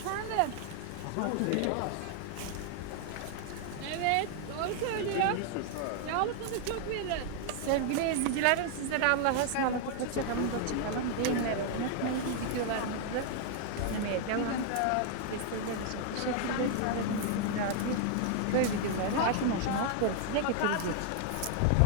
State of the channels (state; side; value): different; both; correlation 0.00